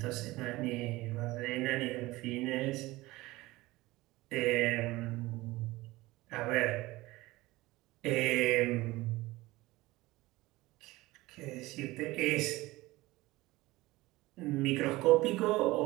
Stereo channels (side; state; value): left; quieter; 19.5 dB